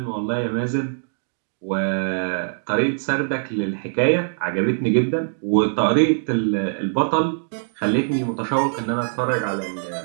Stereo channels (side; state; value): left; silent; digital silence